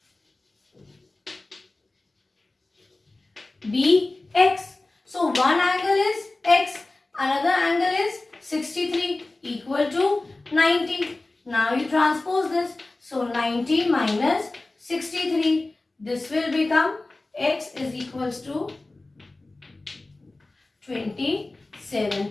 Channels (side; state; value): right; quieter; 3.0 dB